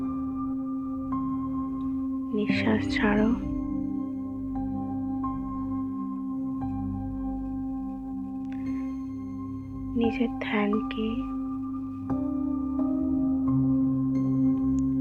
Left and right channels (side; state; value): both; identical; correlation 1.00